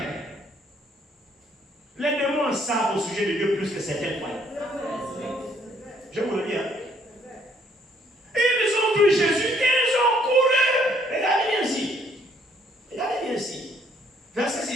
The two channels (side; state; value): both; normal; correlation 0.65